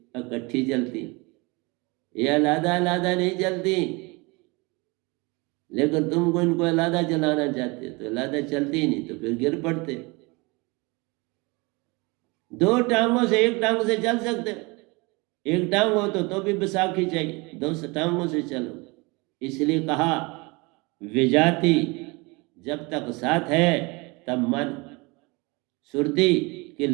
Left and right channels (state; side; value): quieter; left; 26.5 dB